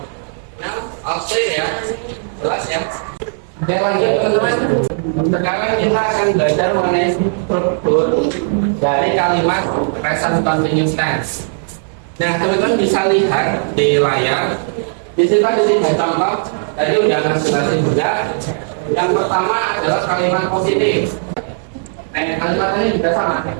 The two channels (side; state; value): left; silent; 68 dB below the other